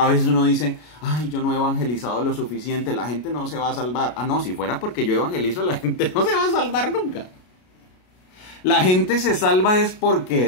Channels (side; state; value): right; late; 33 ms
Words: veces uno dice, ay, yo no he evangelizado lo suficiente, la gente no se va a salvar. Ah, no, si fuera porque yo evangelizo, la gente no se va a salvar nunca. La gente se salva es